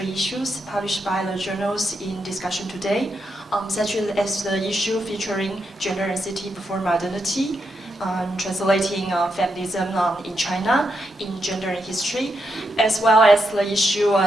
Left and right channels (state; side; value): normal; both; correlation 0.83